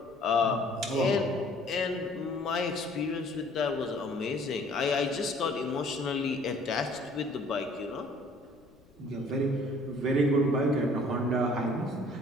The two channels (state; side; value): noise; left; rumble, 29 dB below the sound